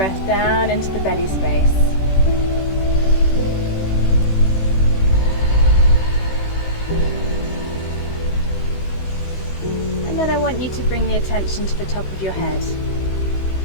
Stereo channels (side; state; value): right; late; 16 ms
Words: down into the belly space. And then I want you to bring the attention to the top of your head.